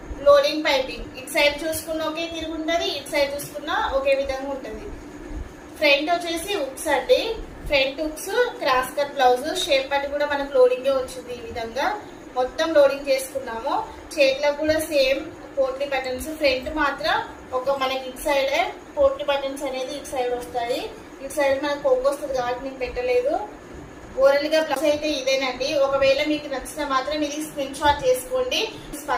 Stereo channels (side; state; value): both; identical; correlation 1.00